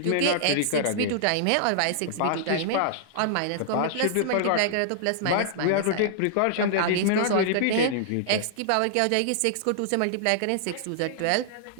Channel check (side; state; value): both; different; correlation -0.01